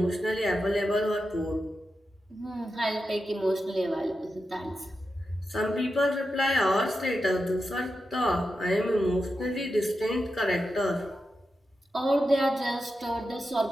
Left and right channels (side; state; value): both; normal; correlation 0.89